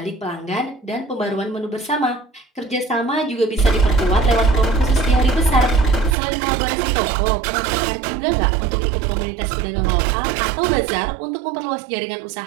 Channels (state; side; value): drops out; left; at 6.2 s